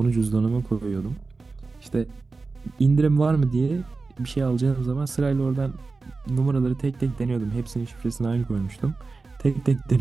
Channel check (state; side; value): quieter; left; 4.0 dB